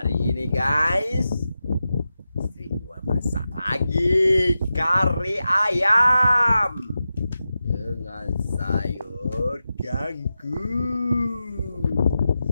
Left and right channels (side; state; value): both; inverted; correlation -0.91